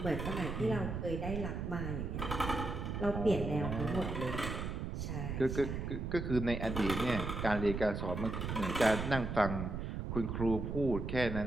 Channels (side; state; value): right; noise; rumble, 3 dB below the sound